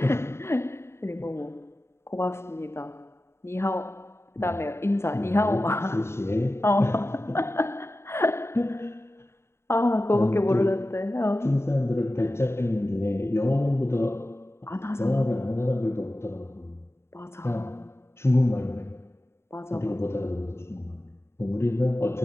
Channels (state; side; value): late; right; 0.12 ms